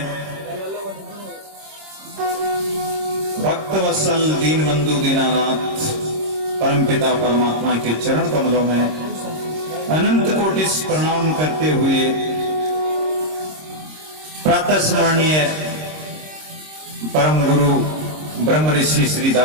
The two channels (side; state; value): left; late; 26 ms